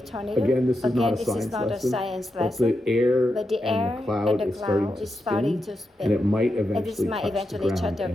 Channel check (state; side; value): normal; both; correlation 0.87